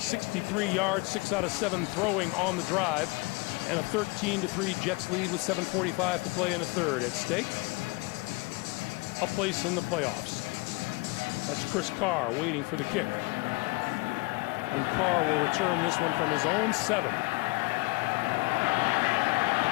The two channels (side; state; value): right; quieter; 26.1 dB